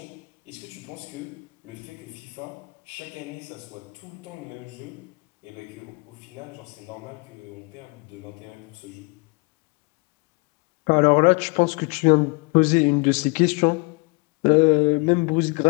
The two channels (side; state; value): right; quieter; 30.3 dB